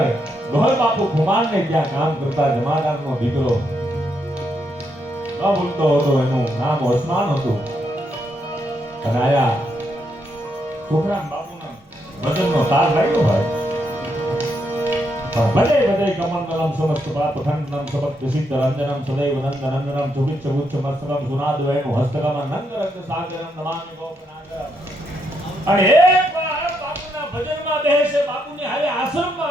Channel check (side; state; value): both; normal; correlation 0.78